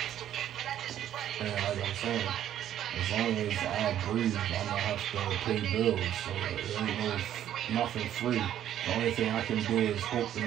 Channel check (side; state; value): left; quieter; 11.1 dB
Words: And like I'm saying, as long as I breathe, I'm gonna have to pay bills. So there ain't nothing free. The only thing I can do is hope to